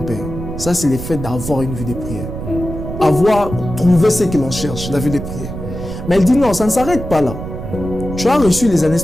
père. Ça, c'est le fait d'avoir une vie de prière. Avoir trouvé ce que l'on cherche, la vie de prière. Mais il dit non, ça ne s'arrête pas là. Tu as reçu les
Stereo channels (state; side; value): noise; right; rumble, 8 dB below the sound